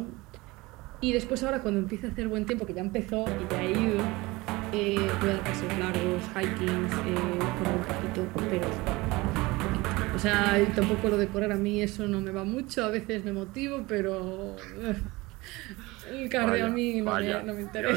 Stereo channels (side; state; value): left; quieter; 22.0 dB